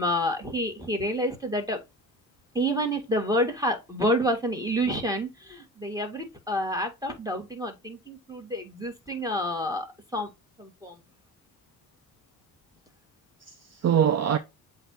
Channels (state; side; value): normal; both; correlation 0.30